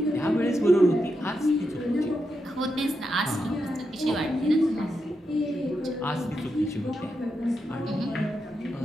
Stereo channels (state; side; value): normal; both; correlation 0.85